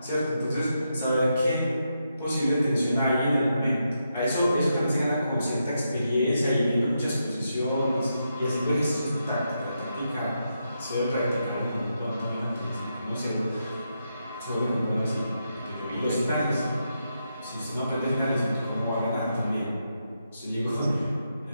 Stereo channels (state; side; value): inverted; both; correlation -0.84